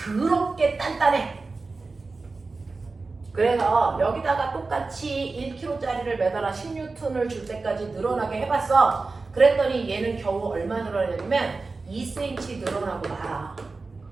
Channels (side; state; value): left; quieter; 3.9 dB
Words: 단단해. 그래서 여기다가 똑같이 1kg짜리를 매달아 10N을 줄 때까지 늘어나게 해봤어. 그랬더니 얘는 겨우 얼마 늘어나냐면 2cm 늘어나고 말아.